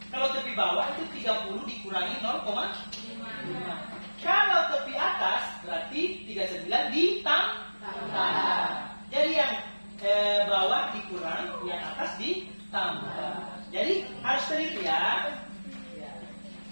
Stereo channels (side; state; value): both; inverted; correlation -1.00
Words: kalau tepi bawah itu 30 dikurangi 0,5. Kalau tepi atas berarti 39 ditambah. Jadi yang bawah dikurang, yang atas ditambah. Jadi harus teliti ya.